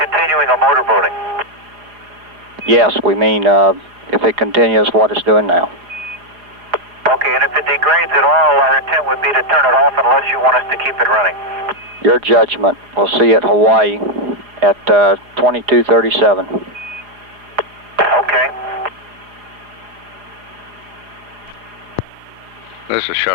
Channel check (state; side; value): late; left; 4.9 ms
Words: a motorboating? Yes, we mean if it continues what it's doing now. Okay, and if it degrades at all, our intent would be to turn it off unless you want us to keep it running. Your judgment. We'll see you at Hawaii at 2237. Okay. This is